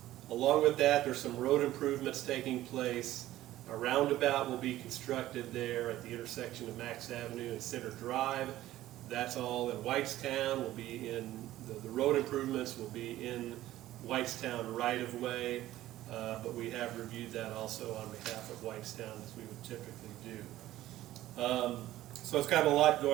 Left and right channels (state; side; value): quieter; left; 14.8 dB